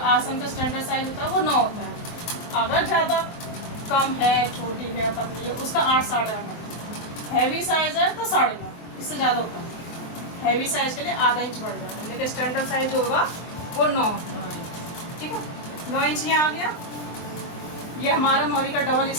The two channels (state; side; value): late; right; 23 ms